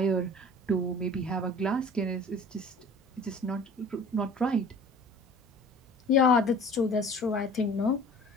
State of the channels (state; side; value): normal; both; correlation 0.45